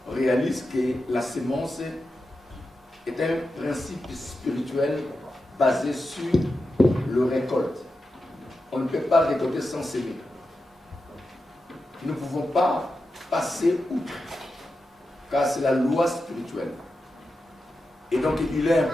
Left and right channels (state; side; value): normal; both; correlation 0.90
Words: réalise que la semence est un principe spirituel basé sur le récolte. On ne peut pas récolter sans semer. Nous ne pouvons pas passer outre, car c'est la loi spirituelle. Et donc il est